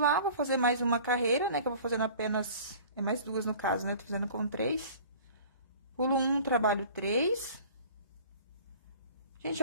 vou fazer mais uma carreira, né? Que eu vou fazendo apenas... É mais 2 no caso, né? Tô fazendo com 3. Pulo 1, trabalho 3. Gente,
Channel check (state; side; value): inverted; both; correlation -0.45